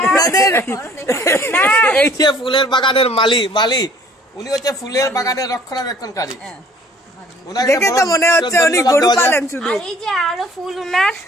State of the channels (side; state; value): both; normal; correlation 0.56